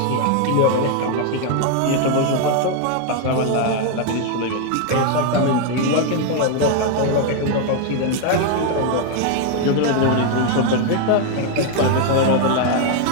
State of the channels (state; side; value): different; both; correlation 0.01